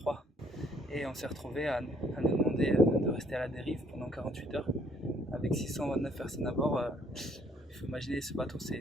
et on s'est retrouvé à nous demander de rester à la dérive pendant 48 heures avec 629 personnes à bord. Il faut imaginer, ce bateau,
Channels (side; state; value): both; normal; correlation 0.64